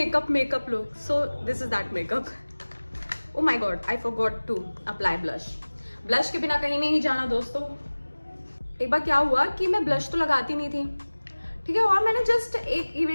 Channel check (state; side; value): inverted; both; correlation -1.00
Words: look, so this is that makeup. Oh my god, I forgot to apply blush. Blush के बिना कहीं नहीं जाना दोस्तों। एक बार क्या हुआ कि मैं ब्लश तो लगाती नहीं थी, ठीक है, और मैंने जस्ट एक